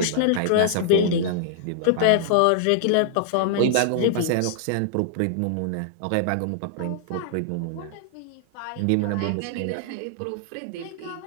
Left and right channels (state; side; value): different; both; correlation -0.01